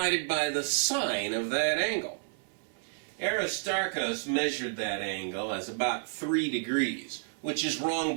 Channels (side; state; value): left; silent; 57 dB below the other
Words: by the sine of that angle. Aristarchus measured that angle as about 3 degrees, which is wrong